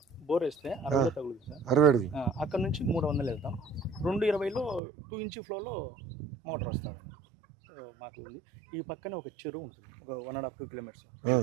బోర్ వేస్తే 60 తగులుతుంది సార్. 60 అక్కడ నుంచి 300 వెళ్తాం. 220లో 2 inch ఫ్లోలో మోటార్ వస్తాం. సో మాకు ఉంది. ఈ పక్కనే ఒక చెరువు ఉంటుంది, ఒక 1.5-2 kilometers.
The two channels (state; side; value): drops out; left; at 4.8 s